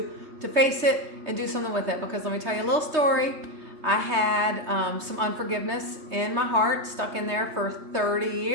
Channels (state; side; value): late; left; 3.2 ms